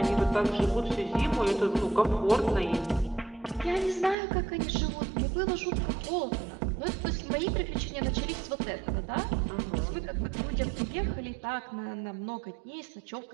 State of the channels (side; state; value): left; drops out; at 4.2 s